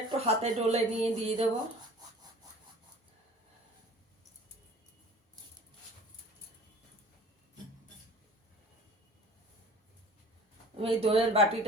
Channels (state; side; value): normal; both; correlation 0.45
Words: একটু হাতে ডলে নিয়ে দিয়ে দেবো। আমি এই দইয়ের